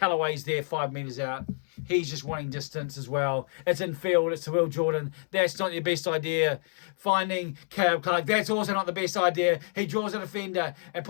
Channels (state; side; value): silent; right; digital silence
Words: there 5 metres out. He's just wanting distance as well. It's in field. It's to Will Jordan. That's not your best idea. Finding Caleb Clark. That's also not the best idea. He draws a defender and